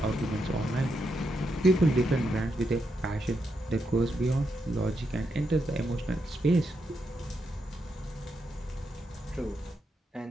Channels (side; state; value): both; normal; correlation 0.83